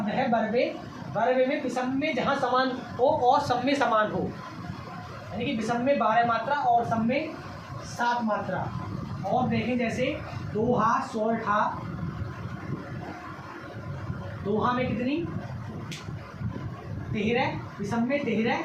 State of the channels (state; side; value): identical; both; correlation 1.00